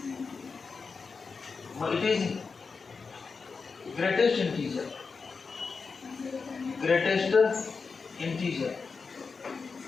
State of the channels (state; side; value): quieter; right; 4.9 dB